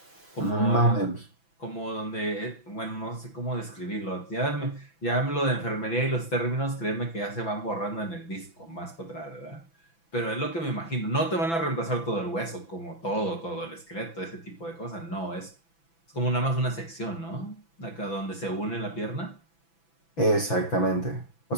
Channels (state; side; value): late; right; 6.0 ms